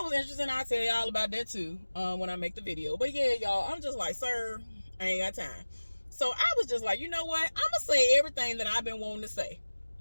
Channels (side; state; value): both; inverted; correlation -1.00